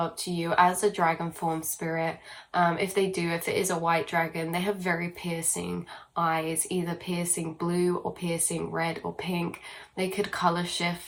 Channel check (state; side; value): identical; both; correlation 1.00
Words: to you as a dragon form spirit. If it is a white dragon, they have very piercing eyes, either piercing blue or piercing red or pink. They could color